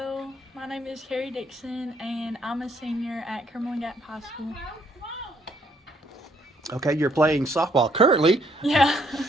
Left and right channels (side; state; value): both; normal; correlation 0.68